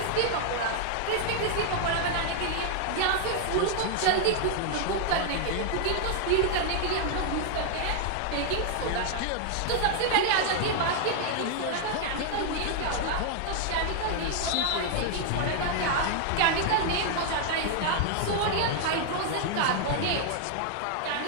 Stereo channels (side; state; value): both; different; correlation 0.00